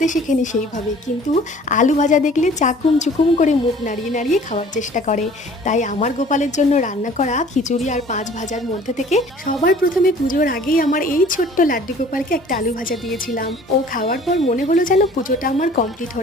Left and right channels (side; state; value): both; normal; correlation 0.50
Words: শেখেনি সেইভাবে, কিন্তু আলু ভাজা দেখলে চাকুম চুকুম করে মুখ নাড়িয়ে নাড়িয়ে খাওয়ার চেষ্টা করে। তাই আমার গোপালের জন্য রান্না করা খিচুড়ি আর পাঁচ ভাজার মধ্যে থেকে সবার প্রথমে পুজোর আগেই আমার এই ছোট্ট লাড্ডু গোপালকে একটা আলু ভাজা দিয়েছিলাম। ও খাওয়ার পর মনে হলো যেন পুজোটা আমার কমপ্লিট